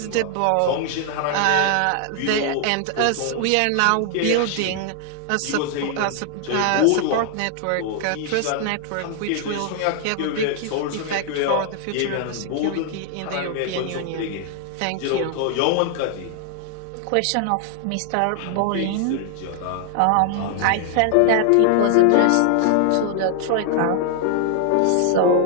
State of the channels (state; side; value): different; both; correlation 0.00